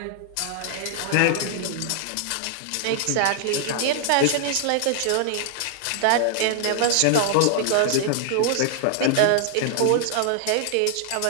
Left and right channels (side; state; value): both; different; correlation -0.01